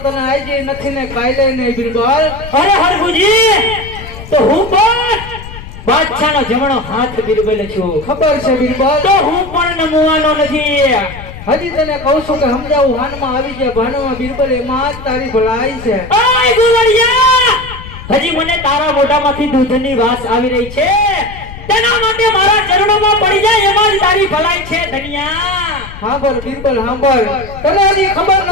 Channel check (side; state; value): left; noise; rumble, 14 dB below the sound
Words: તને આઈ નથી ને કાલે નહીં બિરબલ. અરે હરભુજી, તો હું પણ બાદશાહનો જમણો હાથ બિરબલ છું. ખબર છે બિરબલ, તો હું પણ નમવાનો નથી. હજી તને કહું છું કે સમજાવું, હાનમાં આવી જાય ભાનમાં બિરબલ, એમાં જ તારી ભલાઈ છે. ઓય ગુવડિયા, હજી મને તારા મોઢામાંથી દૂધની વાસ આવી રહી છે, તેના માટે મારા ચરણોમાં પડી જાય, એમાં જ તારી ભલાઈ છે ધનિયા. સાંભળ બિરબલ સાંભળ, તને હજી ખબર